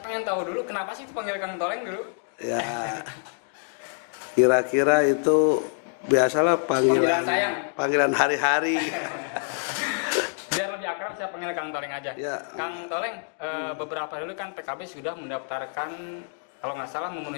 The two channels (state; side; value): silent; right; 60 dB below the other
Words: pengen tahu dulu kenapa sih itu panggil Kang Toleng dulu? Ya, kira-kira itu biasalah Panggilan sayang. panggilan hari-hari. Biar lebih akrab saya panggil Kang Toleng aja. Ya. Kang Toleng, beberapa dulu kan PKB sudah mendaftarkan, kalau nggak salah